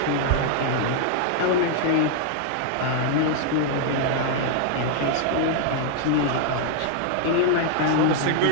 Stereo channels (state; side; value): different; both; correlation 0.00